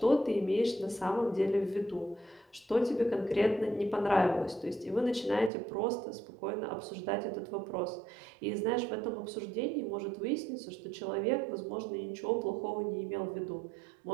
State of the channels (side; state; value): left; drops out; at 5.5 s